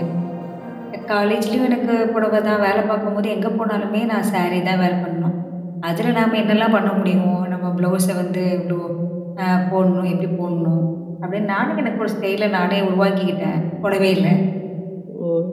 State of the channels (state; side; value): identical; both; correlation 1.00